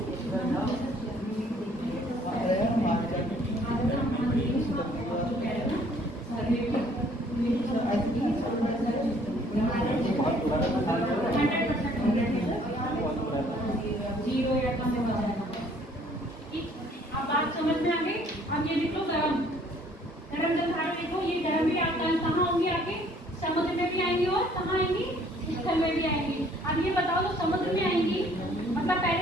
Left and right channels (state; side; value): normal; both; correlation 0.60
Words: जीरो या कम हो जाएगा। ठीक, अब बात समझ में आ गई। अब ये देखो गरम गरम जलधारा देखो, ये गरम भी आपका कहाँ होंगी, आपके समुद्र में भी आएंगी और कहाँ आएंगी, स्थल में भी आएंगी। अब ये बताओ तो समुद्र में आएंगी, मतलब